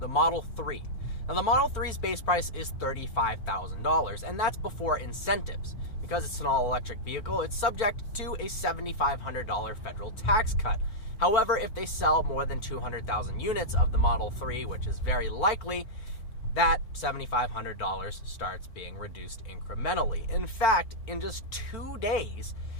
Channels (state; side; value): late; right; 4.4 ms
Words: Model 3. Now, the Model 3's base price is $35,000, and that's before incentives. Because it's an all-electric vehicle, it's subject to a $7,500 federal tax cut. However, if they sell more than 200,000 units of the Model 3, which is very likely, that $7,500 starts being reduced incrementally. In fact, in just 2 days,